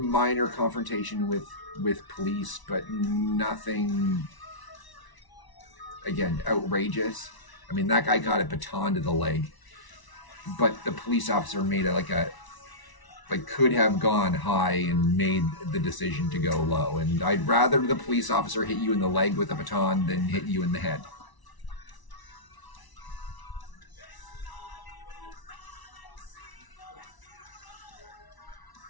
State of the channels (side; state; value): right; late; 1.0 ms